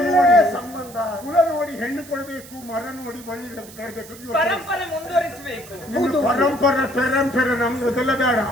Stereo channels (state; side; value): noise; right; hiss, 19 dB below the sound